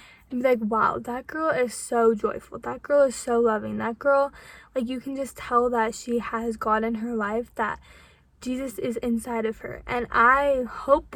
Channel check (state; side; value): identical; both; correlation 1.00